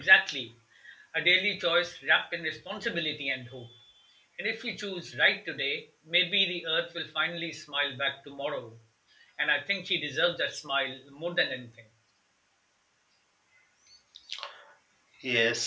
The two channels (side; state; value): both; identical; correlation 1.00